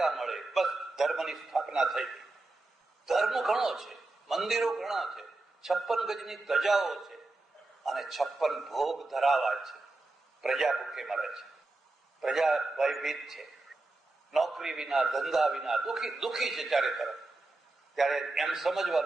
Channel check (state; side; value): quieter; left; 3.1 dB